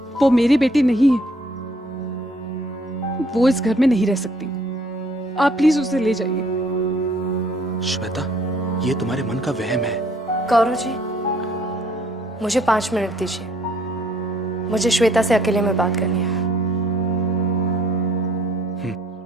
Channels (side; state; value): both; normal; correlation 0.62